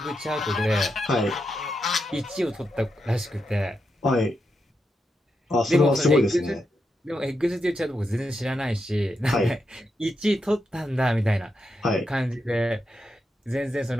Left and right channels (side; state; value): both; normal; correlation 0.85